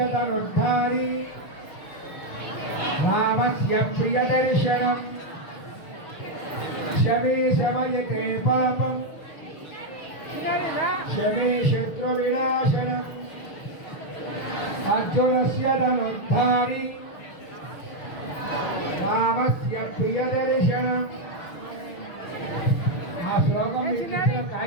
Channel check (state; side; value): late; right; 6.5 ms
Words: ధనుర్ధారి, రామస్య ప్రియదర్శనం, శమీ శమయతే పాపం, శమీ శత్రు వినాశనం, అర్జునస్య ధనుర్ధారి, రామస్య ప్రియదర్శనం. ఆ శ్లోకం మీకు ఇచ్చిన